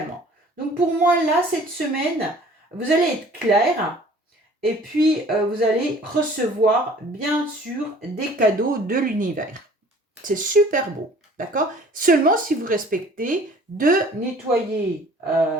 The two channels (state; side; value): normal; both; correlation 0.51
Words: Donc, pour moi, là, cette semaine, vous allez être clair. Et puis, vous allez recevoir, bien sûr, des cadeaux de l'univers. C'est super beau, d'accord ? Seulement si vous respectez de nettoyer